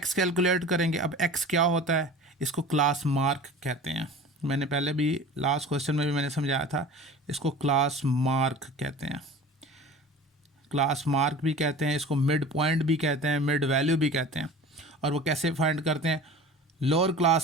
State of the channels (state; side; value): normal; both; correlation 0.39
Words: कैलकुलेट करेंगे। अब एक्स क्या होता है, इसको क्लास मार्क कहते हैं। मैंने पहले भी लास्ट क्वेश्चन में भी मैंने समझाया था, इसको क्लास मार्क कहते हैं, क्लास मार्क भी कहते हैं, इसको मिड पॉइंट भी कहते हैं, मिड वैल्यू भी कहते हैं। और वो कैसे फाइंड करते हैं, lower